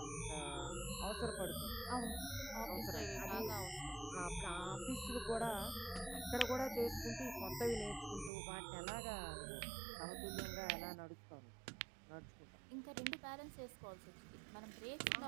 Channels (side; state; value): left; drops out; at 8.3 s